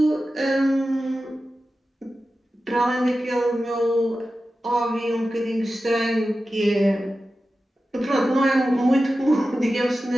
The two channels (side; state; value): both; normal; correlation 0.93